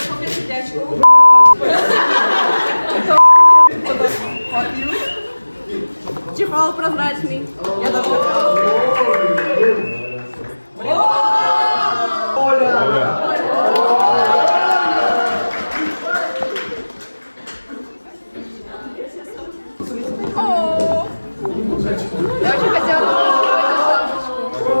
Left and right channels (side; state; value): both; inverted; correlation -1.00